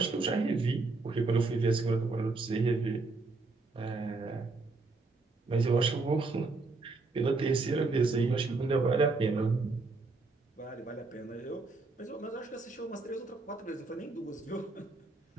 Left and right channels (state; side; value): quieter; left; 3.7 dB